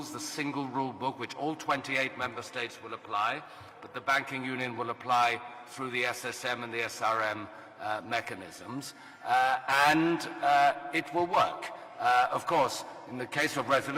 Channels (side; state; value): both; identical; correlation 1.00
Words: the single rule book, which all 28 member states will apply, but the banking union will apply through the SSM and the SRM mechanisms, and it will work. Of course, in the case of